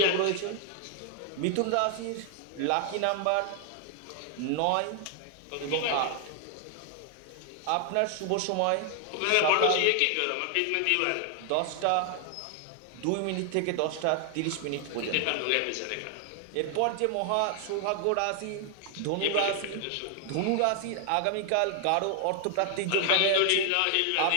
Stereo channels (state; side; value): different; both; correlation 0.00